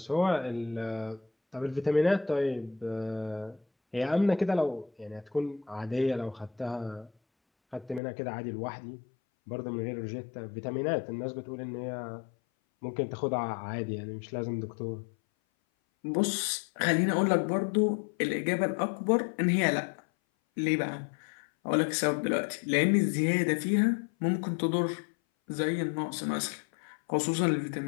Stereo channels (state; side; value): drops out; right; at 8.0 s